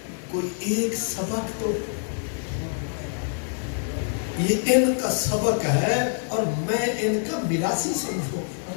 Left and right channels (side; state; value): right; silent; 57 dB below the other